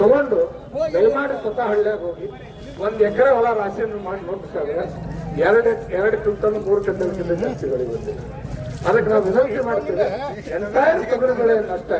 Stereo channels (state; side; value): identical; both; correlation 1.00